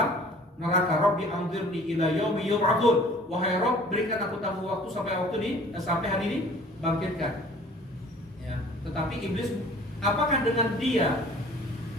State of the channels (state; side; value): normal; both; correlation 0.50